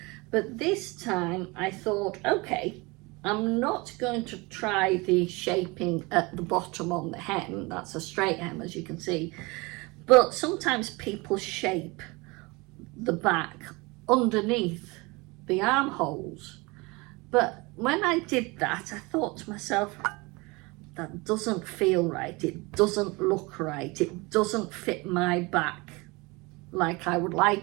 But this time I thought, okay, I'm not going to try the shaping at the bottom on the hem. That's a straight hem, as you can see. But sometimes people shape the back underneath the armholes. But when I did that, I thought to myself, that doesn't feel right. It doesn't look right. It doesn't fit my back like I would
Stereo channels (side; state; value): left; quieter; 25.4 dB